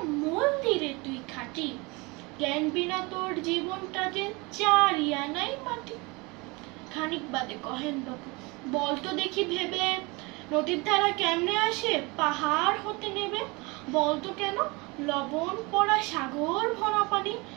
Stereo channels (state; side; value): quieter; left; 26.2 dB